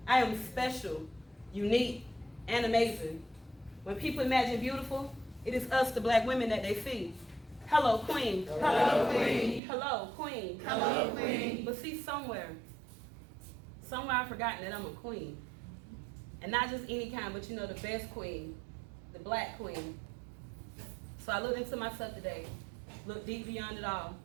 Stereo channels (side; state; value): left; drops out; at 9.6 s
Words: I am special, unique, and amazing. When people imagine beautiful, it is us, the black women, that they see. Hello, queen. Hello, queen. Hello, queen. Hello, queen. But see, somewhere I've forgotten that I'm a queen. And not just any kind, but you know, the best queen, the black queen. So I looked into myself today, looked deep beyond it all,